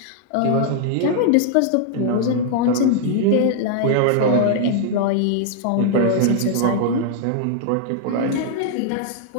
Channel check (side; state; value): both; different; correlation -0.01